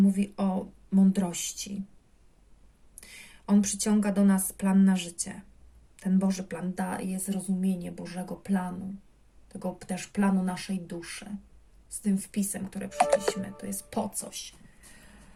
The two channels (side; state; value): both; identical; correlation 1.00